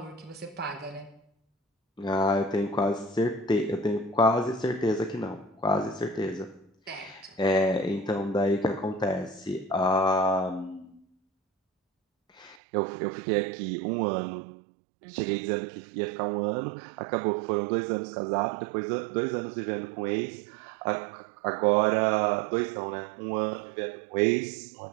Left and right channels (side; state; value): left; drops out; at 12.6 s